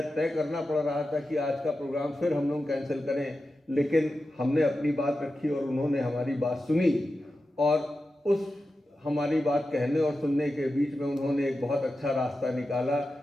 तय करना पड़ रहा था कि आज का प्रोग्राम फिर हम लोग कैंसिल करें, लेकिन हमने अपनी बात रखी और उन्होंने हमारी बात सुनी और उस हमारी बात कहने और सुनने के बीच में उन्होंने एक बहुत अच्छा रास्ता निकाला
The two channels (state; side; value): normal; both; correlation 0.92